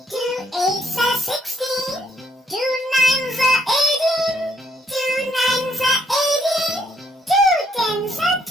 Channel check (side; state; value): both; normal; correlation 0.68